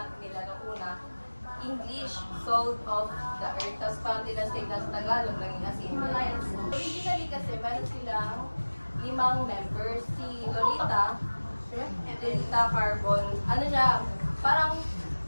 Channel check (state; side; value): inverted; both; correlation -1.00